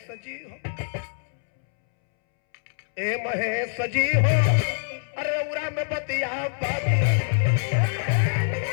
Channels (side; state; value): right; silent; 62 dB below the other